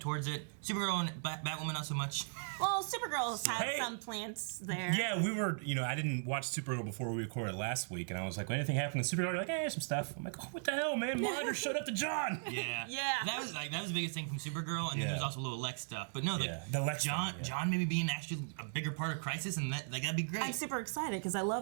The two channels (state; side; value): silent; left; digital silence